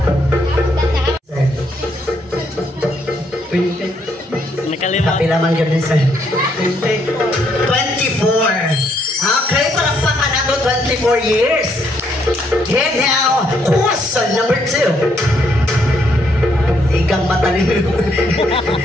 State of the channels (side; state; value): both; normal; correlation 0.72